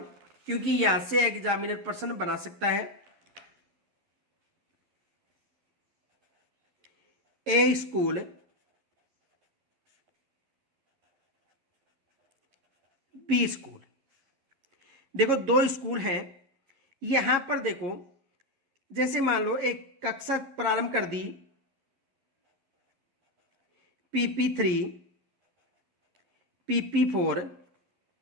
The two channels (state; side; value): late; left; 11 ms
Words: क्योंकि यहां से एग्जामिनर प्रश्न बना सकता है। ए स्कूल, बी स्कूल। देखो दो स्कूल हैं। यहां पर देखो जैसे मान लो एक कक्षा प्रारंभ कर दी, PP3, PP4,